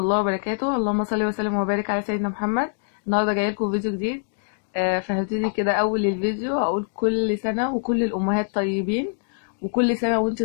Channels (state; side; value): silent; right; digital silence